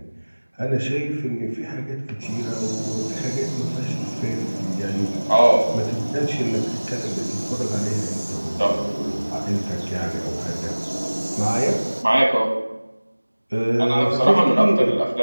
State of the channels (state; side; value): inverted; both; correlation -1.00